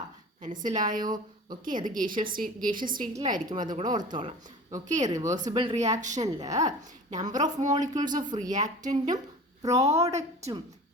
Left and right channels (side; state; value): both; normal; correlation 0.38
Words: മനസ്സിലായോ? ഓക്കെ, അത് ഗേഷ്യസ് സ്റ്റേറ്റിലായിരിക്കും, അതുകൂടെ ഓർത്തോളാം. ഓക്കെ, റിവേഴ്സിബിൾ റിയാക്ഷനിൽ നമ്പർ ഓഫ് മോളിക്യൂൾസ് ഓഫ് റിയാക്റ്റൻറ്റും പ്രോഡക്റ്റും